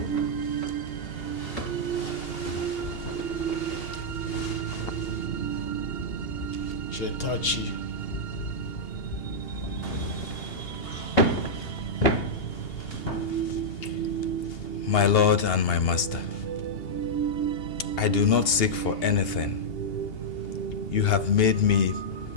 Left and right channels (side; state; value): right; late; 2.8 ms